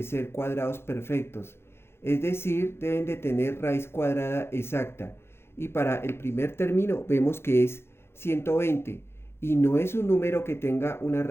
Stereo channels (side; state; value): right; late; 0.12 ms